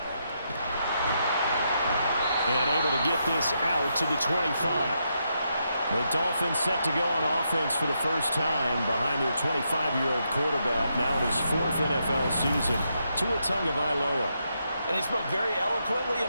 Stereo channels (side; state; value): both; inverted; correlation -0.81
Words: And able to get this out to the 25. The Dolphins set to go on offense for the first time behind their 25-year-old quarterback, now in his 4th NFL season, Tua Tagovailoa. And he spoke very eloquently